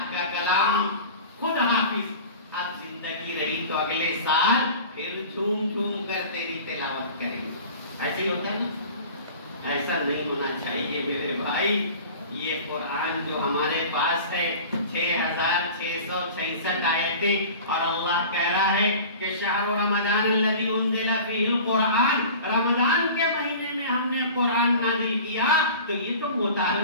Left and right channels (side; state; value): both; inverted; correlation -0.39